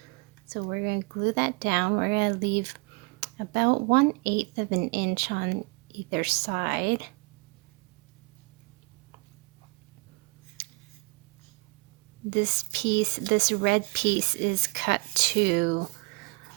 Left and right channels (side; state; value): left; quieter; 27.9 dB